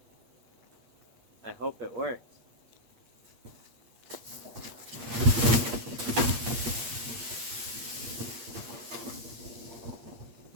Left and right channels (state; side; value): late; left; 8.6 ms